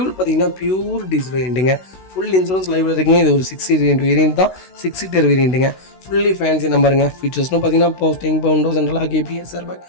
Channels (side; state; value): right; late; 16 ms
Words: பார்த்தீங்கன்னா பியூர் டீசல் வேரியண்ட்டுங்க. ஃபுல் இன்சூரன்ஸ் லைவில் இருக்குங்க. இது ஒரு 6 சீட்டர் வேரியண்ட் தான். 6 சீட்டர் வேரியண்ட்டுங்க. ஃபுல்லி ஃபேன்சி நம்பருங்க. ஃபீச்சர்ஸ்னு பார்த்தீங்கன்னா power steering, power window, central lock, கேபிஎஸ், airbag,